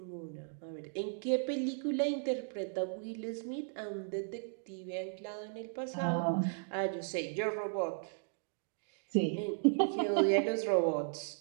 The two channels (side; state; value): left; silent; digital silence